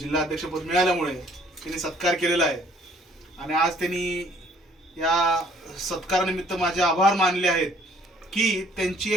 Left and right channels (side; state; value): both; normal; correlation 0.60